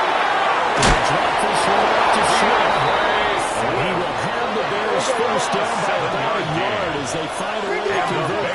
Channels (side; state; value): both; identical; correlation 1.00